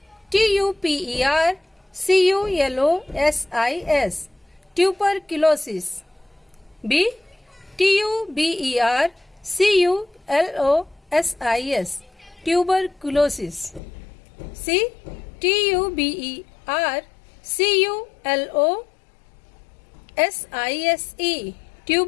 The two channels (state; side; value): drops out; right; at 13.8 s